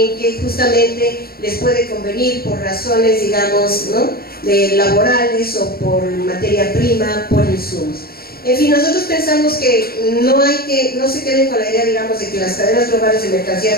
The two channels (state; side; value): late; right; 0.44 ms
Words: que justamente les puede convenir por razones, digamos, ¿no?, laborales o por materia prima, por insumos. En fin, nosotros pensamos que no se queden con la idea, digamos, de que las cadenas globales de